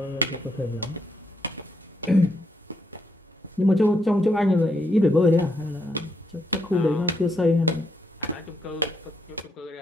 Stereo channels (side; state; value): both; normal; correlation 0.77